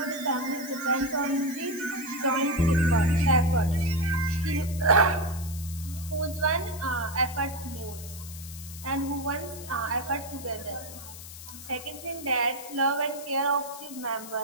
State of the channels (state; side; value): noise; left; hiss, 14 dB below the sound